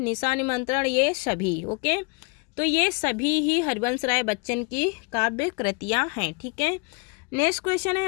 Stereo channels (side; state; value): right; quieter; 32.0 dB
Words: निमंत्रण, ये सभी, ओके। तो ये सभी ही हरिवंश राय बच्चन की काव्य कृतियाँ हैं, ठीक है। नेक्स्ट क्वेश्चन है